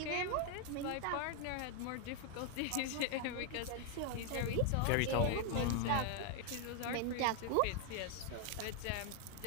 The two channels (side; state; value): both; different; correlation 0.01